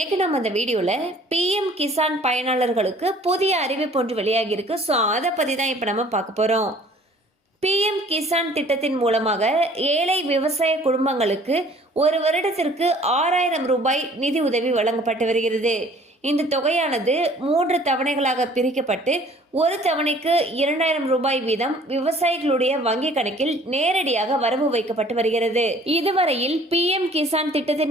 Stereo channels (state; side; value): normal; both; correlation 0.53